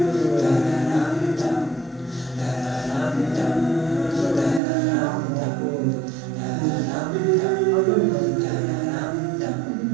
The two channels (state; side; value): drops out; left; at 4.6 s